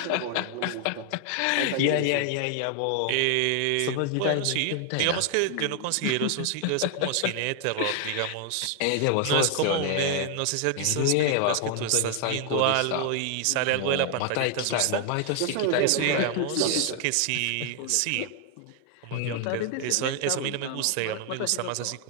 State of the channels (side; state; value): both; different; correlation 0.00